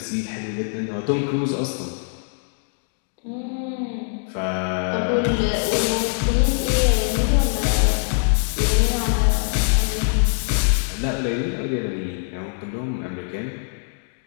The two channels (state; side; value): silent; right; digital silence